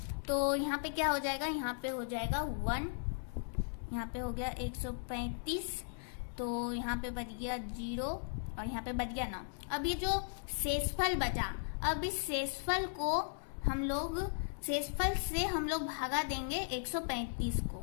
तो यहाँ पे क्या हो जाएगा, यहाँ पे हो जाएगा 1, यहाँ पे हो गया 135, तो यहाँ पे बच गया 0 और यहाँ पे बच गया 9। अब ये जो शेषफल बचा, अब इस शेषफल को हम लोग, शेषफल से हम लोग भागा देंगे 135 को,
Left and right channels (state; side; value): silent; right; digital silence